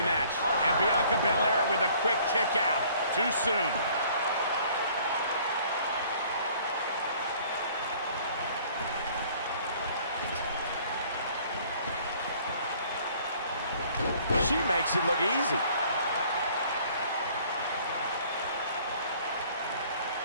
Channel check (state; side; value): inverted; both; correlation -0.56